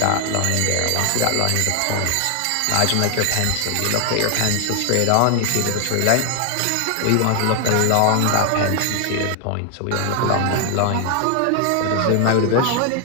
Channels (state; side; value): different; both; correlation 0.00